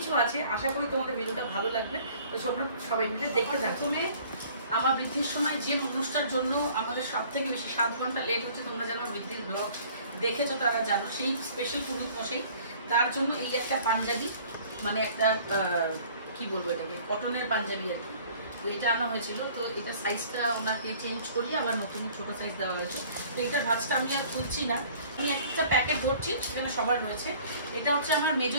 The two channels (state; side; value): inverted; both; correlation -0.52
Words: আছে, আশা করি তোমাদের ভিডিওটা ভালো লাগবে। তো সবাই মিলে দেখতে থাকো। প্রথমে আমার বৃদ্ধির সময় যে মানুষটার জন্য আমাদের সব থেকে বেশি 7 ঘন্টা লেট হচ্ছে, তোমরা জানো বৃদ্ধির ব্লগ দেখেছো, তারা জানো, সেই স্পেশাল পুরুষ মশাই, তার জন্য এই একটা পাঞ্জাবি, মানে একটা কি বলবো এটাকে, কটনের পাঞ্জাবি আর কি। তো এটা আনা হয়েছিল, তো এটা সাইজটা ওনাকে চেঞ্জ করিয়ে আবার নতুন ছোট সাইজ দেওয়া হয়েছে। তো এটার ভাঁজটা আমি আর খুলছি না, আমি একটা প্যাকেট ধরছি, সেখানে সবার রয়েছে। এটা হচ্ছে আমার মেজো